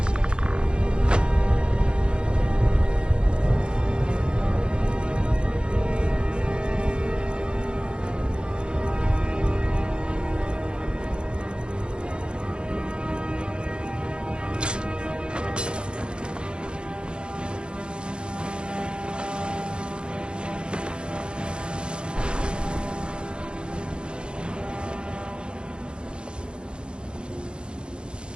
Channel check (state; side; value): late; left; 0.053 ms